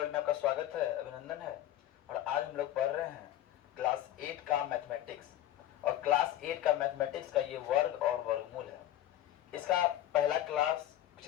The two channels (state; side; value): quieter; right; 13.0 dB